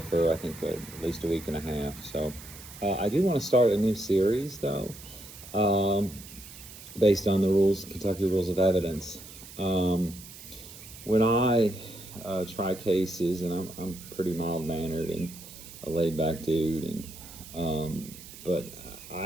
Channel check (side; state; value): right; noise; hiss, 16 dB below the sound